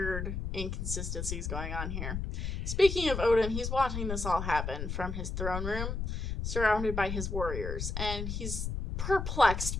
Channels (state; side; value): noise; left; rumble, 3 dB below the sound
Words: inconsistencies going on here. Speaking of Odin, he's watching this all happen from his throne room, surrounded by his warriors, and he's